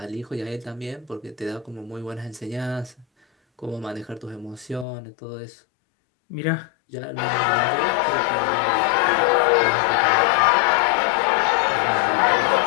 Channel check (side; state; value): right; drops out; at 4.9 s